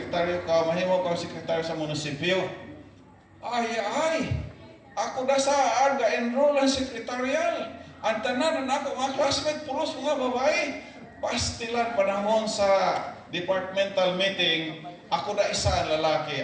ka, mahimo ka sekretaryo sa munisipyo. Ay, ako na saan ga-enroll ang sekretarial. Ang tanan na ako, mga classmate, pulos mga babae. Pastilan panahon sa departmental meeting, ako na isa ang lalaki.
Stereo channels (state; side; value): identical; both; correlation 1.00